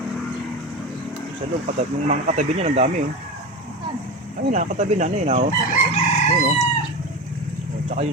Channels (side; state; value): both; normal; correlation 0.25